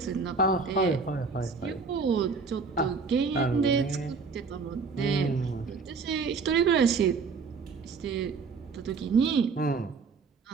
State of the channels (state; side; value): quieter; left; 4.8 dB